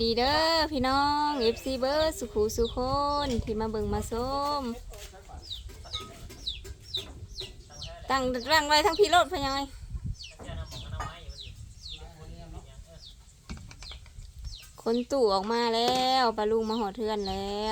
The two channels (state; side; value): identical; both; correlation 1.00